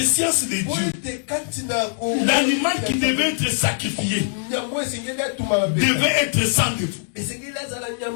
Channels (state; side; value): silent; right; digital silence